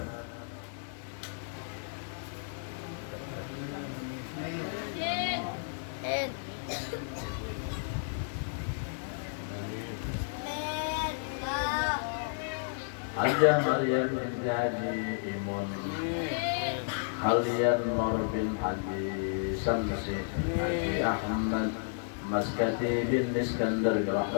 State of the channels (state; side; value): silent; right; digital silence